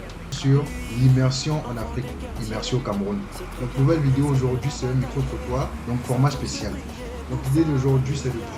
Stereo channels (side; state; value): both; identical; correlation 1.00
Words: sur l'immersion en Afrique, immersion au Cameroun. Donc nouvelle vidéo aujourd'hui, c'est un micro-trottoir, donc format spécial. Donc l'idée d'aujourd'hui, c'est de